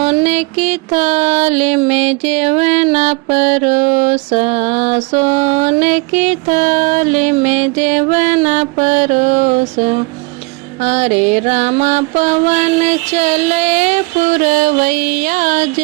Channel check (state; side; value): quieter; left; 27.0 dB